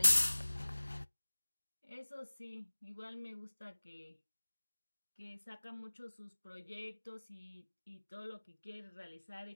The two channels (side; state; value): both; inverted; correlation -1.00